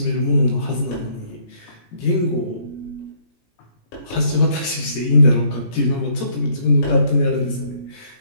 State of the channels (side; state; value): right; late; 17 ms